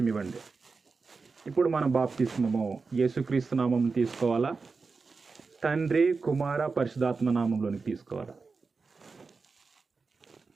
ఇవ్వండి. ఇప్పుడు మనం బాప్తిస్మము యేసుక్రీస్తు నామం తీసుకోవాలా, తండ్రి కుమార పరిశుద్ధాత్మ నామంలోనికి తీసుకోవాలి?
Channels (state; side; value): quieter; left; 4.5 dB